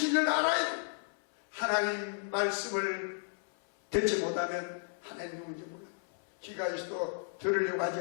알아야 돼요. 하나님 말씀을 듣지 못하면 하나님 누군지 몰라요. 귀가 있어도 들으려고 하지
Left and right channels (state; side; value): silent; right; 56 dB below the other